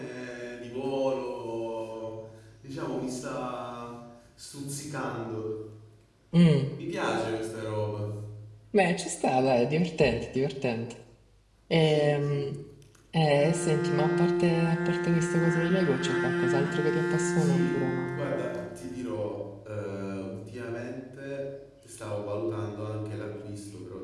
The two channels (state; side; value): identical; both; correlation 1.00